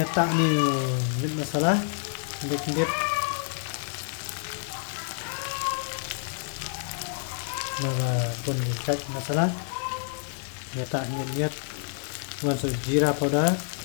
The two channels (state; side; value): silent; right; digital silence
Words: tak ni masalah. Keding-keding. Maka pun cek masalah. Ya tak niat masuk jira powder.